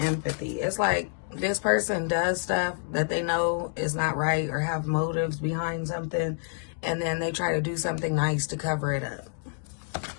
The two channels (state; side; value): silent; right; digital silence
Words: empathy. It's like this person does stuff that they know is not right or have motives behind something, and then they try to do something nice to cover it up.